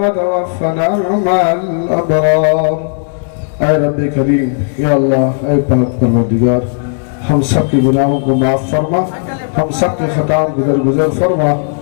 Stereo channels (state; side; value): silent; right; digital silence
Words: مع الابرار. اے رب کریم، یا اللہ، اے پاک پروردگار، ہم سب کے گناہوں کو معاف فرما، ہم سب کے خطاؤں کو درگزر فرما،